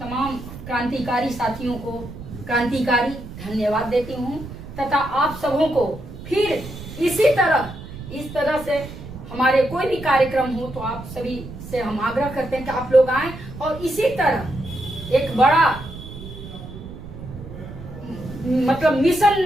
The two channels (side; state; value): right; noise; rumble, 13 dB below the sound